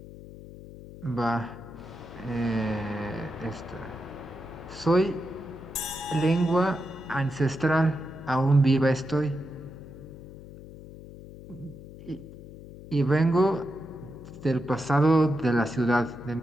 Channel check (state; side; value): noise; left; hum, 15 dB below the sound